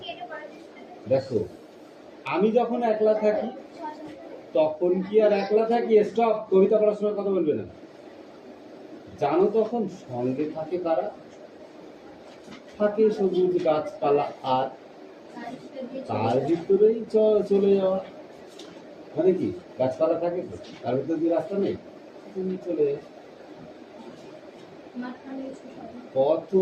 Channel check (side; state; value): both; identical; correlation 1.00